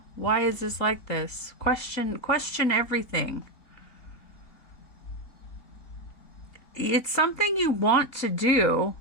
why is this like this? Question everything. It's something you want to do,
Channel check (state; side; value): late; right; 3.9 ms